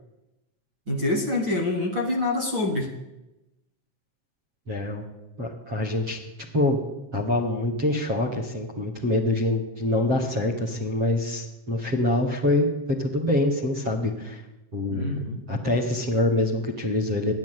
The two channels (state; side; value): late; left; 7.6 ms